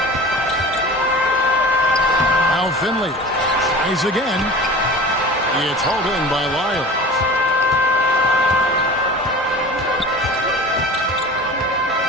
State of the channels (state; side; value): normal; both; correlation 0.38